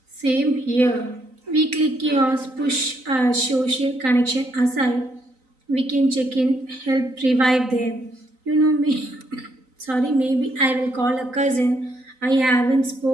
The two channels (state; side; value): late; left; 3.9 ms